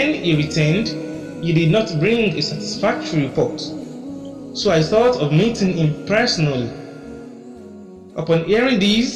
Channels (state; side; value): identical; both; correlation 1.00